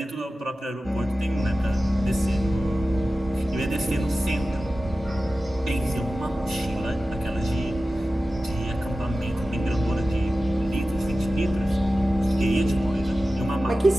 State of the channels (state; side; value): normal; both; correlation 0.95